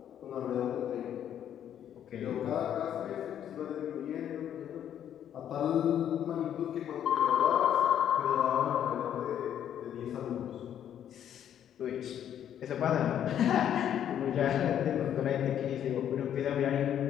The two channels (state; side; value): quieter; right; 10.0 dB